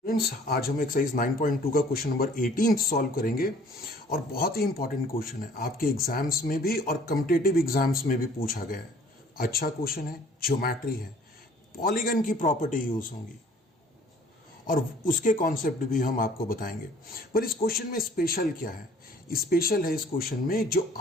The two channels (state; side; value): normal; both; correlation 0.54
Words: फ्रेंड्स, आज हम एक्सरसाइज 9.2 का क्वेश्चन नंबर 18 सॉल्व करेंगे और बहुत ही इंपॉर्टेंट क्वेश्चन है। आपके एग्जाम्स में भी और कॉम्पिटिटिव एग्जाम्स में भी पूछा गया है। अच्छा क्वेश्चन है, ज्योमेट्री है, पॉलीगन की प्रॉपर्टी यूज होंगी और उसके कॉन्सेप्ट भी हम आपको बताएंगे। पर इस क्वेश्चन में स्पेशल क्या है? स्पेशल है इस क्वेश्चन में जो